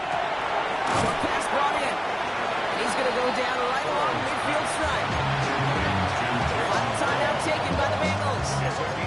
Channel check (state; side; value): identical; both; correlation 1.00